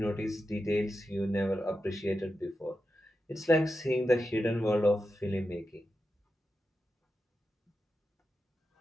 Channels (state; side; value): normal; both; correlation 0.90